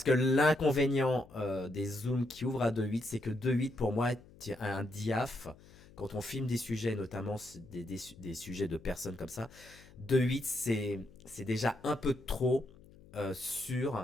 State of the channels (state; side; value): noise; left; hum, 23 dB below the sound